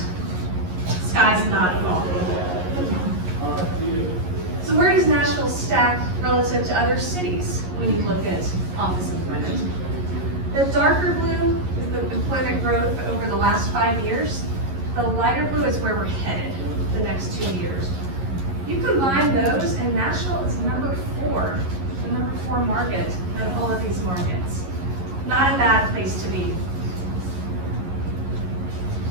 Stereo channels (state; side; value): late; left; 11 ms